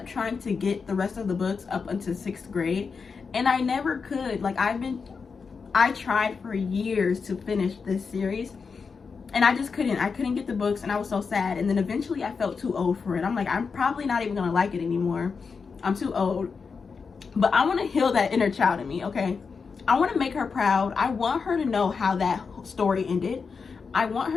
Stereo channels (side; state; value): right; quieter; 5.3 dB